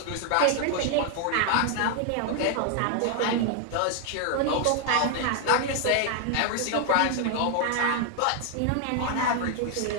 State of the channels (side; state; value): both; different; correlation 0.00